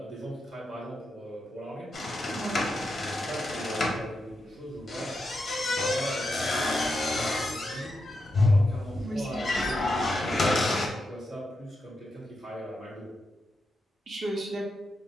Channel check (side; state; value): both; normal; correlation 0.86